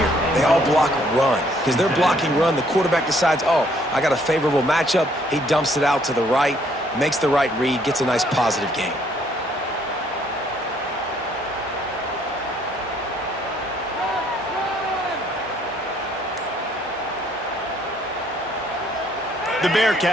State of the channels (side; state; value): both; normal; correlation 0.65